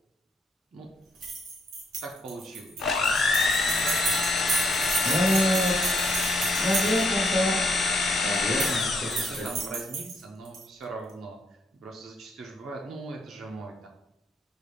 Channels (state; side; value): normal; both; correlation 0.71